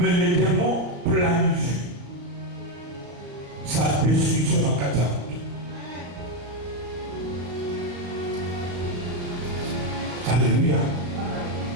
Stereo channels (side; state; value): left; late; 35 ms